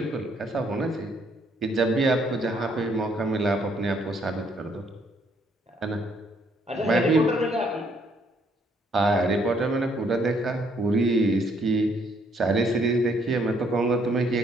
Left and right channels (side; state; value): both; normal; correlation 0.68